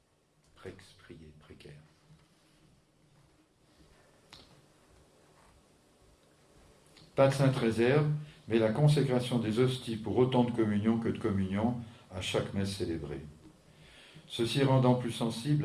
Prex, prier, précaire. Pas de sainte réserve, mais la consécration des hosties pour autant de communion que de communion à chaque messe célébrée. Ceci rendant plus sensible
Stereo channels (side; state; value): both; identical; correlation 1.00